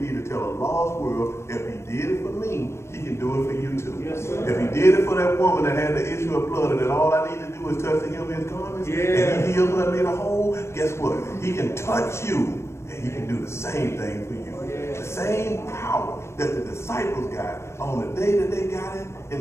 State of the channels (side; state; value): right; late; 0.13 ms